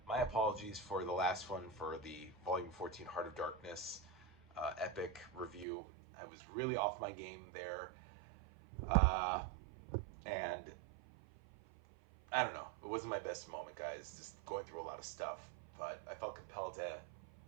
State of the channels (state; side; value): drops out; left; at 5.7 s